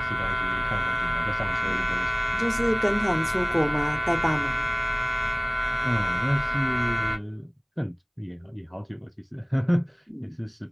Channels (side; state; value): both; identical; correlation 1.00